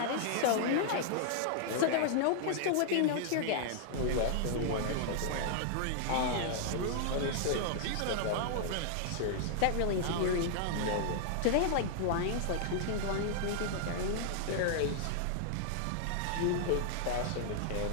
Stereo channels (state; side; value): different; both; correlation -0.01